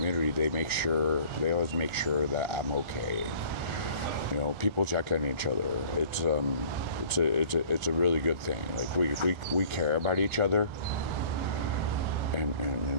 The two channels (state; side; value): late; left; 1.4 ms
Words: they always make sure that I'm okay. People check on each other. It's a really good thing. Like we care about each other, and